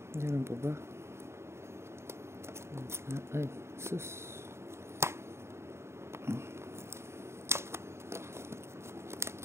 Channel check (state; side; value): late; left; 0.13 ms